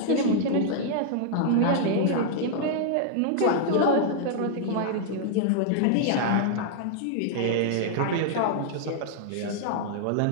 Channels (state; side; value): different; both; correlation -0.01